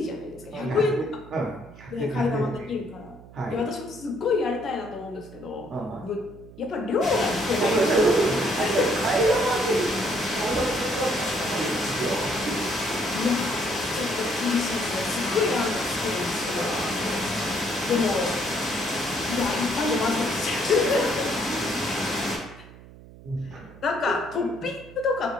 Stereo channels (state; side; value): noise; right; hum, 19 dB below the sound